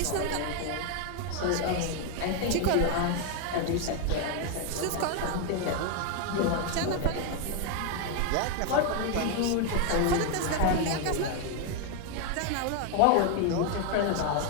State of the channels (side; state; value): both; different; correlation 0.01